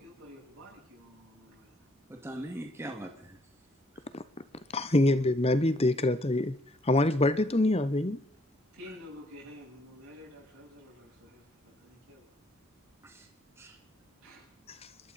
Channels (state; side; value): normal; both; correlation 0.68